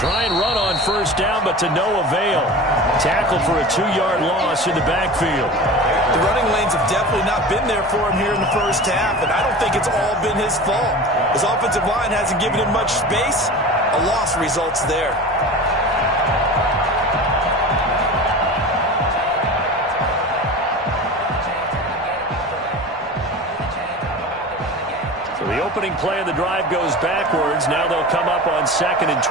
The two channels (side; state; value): both; normal; correlation 0.34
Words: and run on first down, but to no avail. Tackled for a 2-yard loss in the backfield. The running lanes have definitely not been there for him here in the first half, and I don't think it's all been his fault. His offensive line hasn't given him much space. A loss results there. So the opening play of the drive goes backwards. Now they'll come up on 2nd and